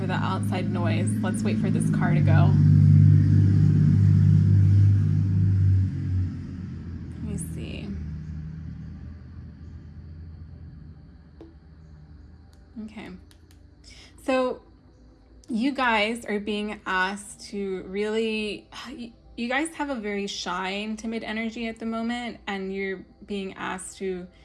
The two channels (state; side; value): identical; both; correlation 1.00